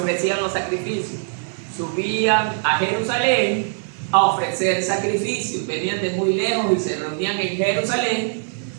los sacrificios. Subían a Jerusalén a ofrecer sacrificios. Venían de muy lejos y se reunían en Jerusalén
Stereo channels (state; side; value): silent; left; 64 dB below the other